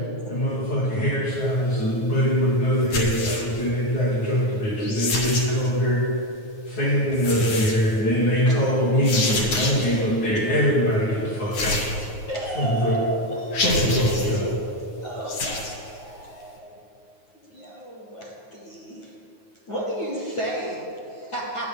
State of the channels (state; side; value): late; right; 9.4 ms